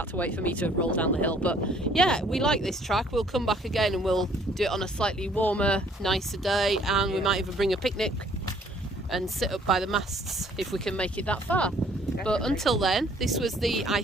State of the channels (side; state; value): both; normal; correlation 0.60